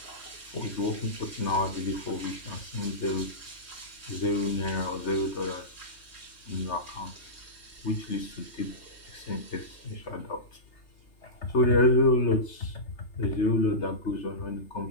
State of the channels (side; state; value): right; late; 3.3 ms